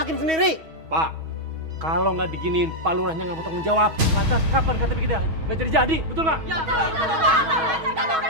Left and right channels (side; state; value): left; late; 6.2 ms